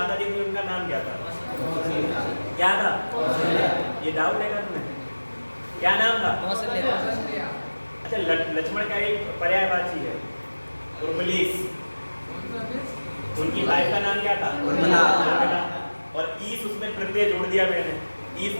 जी थी उनका नाम क्या था? क्या था? ये डाउट है क्या तुम्हें? क्या नाम था? अच्छा, लक्ष्मण का एक पर्यायवाची है उर्वलीस। उनकी वाइफ का नाम क्या था? और ईस उसमें प्रत्यय जोड़ दिया मैंने। ईस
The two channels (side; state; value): both; inverted; correlation -1.00